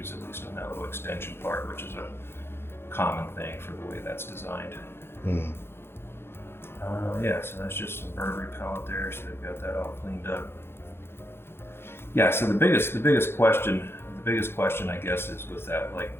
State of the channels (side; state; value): right; late; 0.11 ms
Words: at least on that little extension part, which is a common thing for the way that's designed. Yeah, so that's just some bird repellent there, so they've got that all cleaned up. Yeah, so the biggest question I guess is with that like